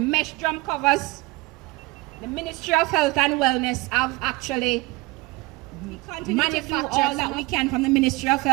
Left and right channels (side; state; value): left; quieter; 22.8 dB